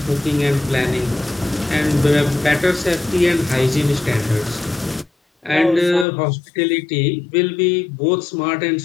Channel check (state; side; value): drops out; right; at 6.1 s